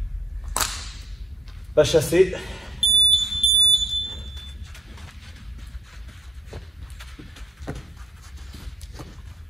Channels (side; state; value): both; normal; correlation 0.74